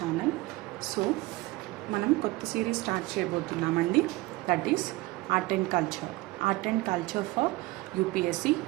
So మనం కొత్త series start చేయబోతున్నామండి. That is art and culture for UPSC.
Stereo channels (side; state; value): left; quieter; 20.8 dB